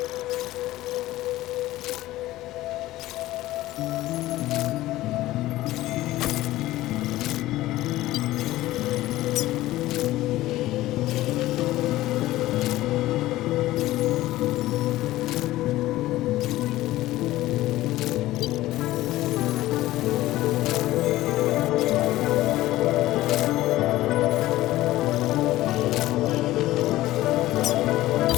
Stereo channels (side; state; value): right; quieter; 16.4 dB